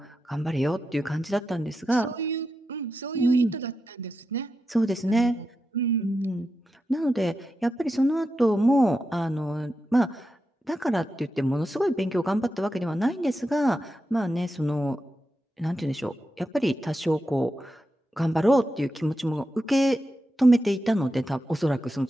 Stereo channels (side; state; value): both; normal; correlation 0.89